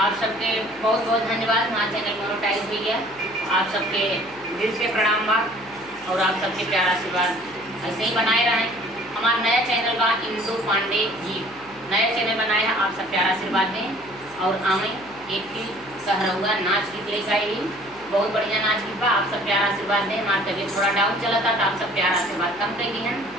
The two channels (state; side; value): noise; right; hum, 26 dB below the sound